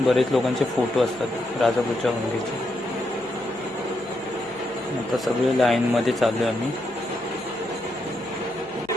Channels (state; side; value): noise; left; hum, 27 dB below the sound